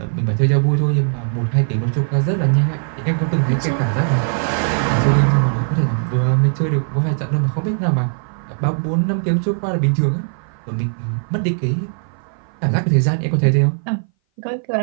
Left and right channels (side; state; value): left; silent; 59 dB below the other